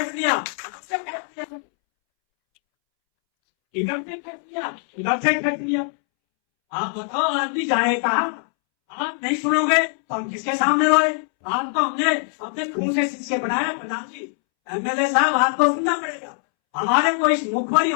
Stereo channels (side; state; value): right; silent; 64 dB below the other